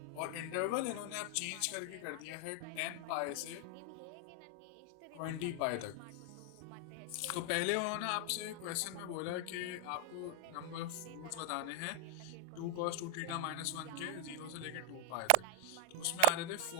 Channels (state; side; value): different; both; correlation 0.00